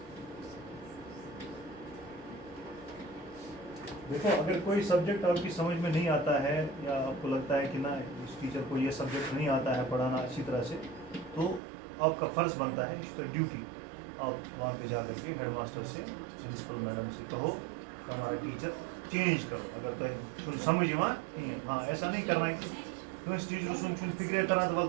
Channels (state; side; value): drops out; left; at 11.6 s